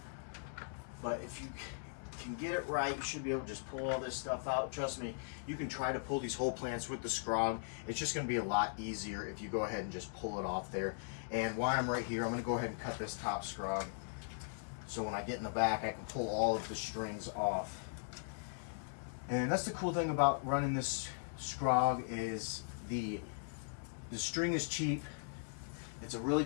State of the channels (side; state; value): right; silent; digital silence